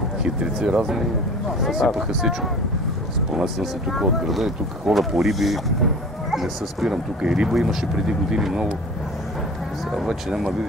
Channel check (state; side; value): normal; both; correlation 0.41